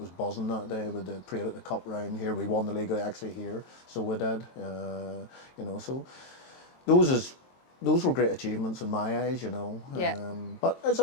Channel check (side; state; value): right; late; 23 ms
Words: buzzing that day with the parade at the cup round here. We won the league actually here, so we did. So those were great achievements in my eyes, Yeah. But as I